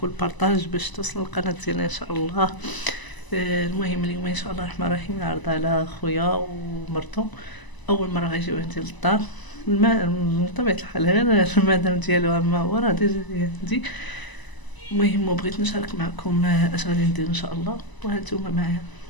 والبارطاج باش توصل القناه ديالنا ان شاء الله. المهم اليوم ان شاء الله الرحمن الرحيم نعرض على خويا ومرتو اول مره غيجيو عندي للدار. من طبيعه الحال غير المدام ديالو اما هو راه ديجا. المهم بغيت نشارك معكم اش غادي ندير ان شاء الله، وهانتوما معايا.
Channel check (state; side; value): late; right; 1.0 ms